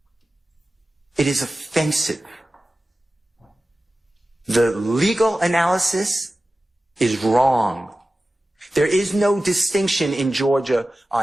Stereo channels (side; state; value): both; normal; correlation 0.95